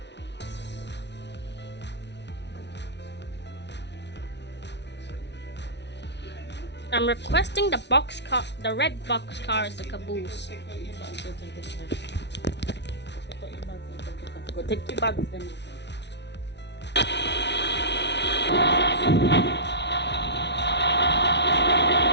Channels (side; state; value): right; late; 0.50 ms